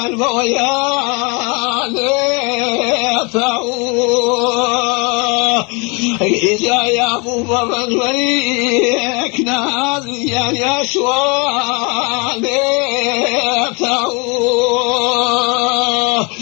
بويان إجا يا أبو بابا المليك نازيان يا شوان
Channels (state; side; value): quieter; right; 30.8 dB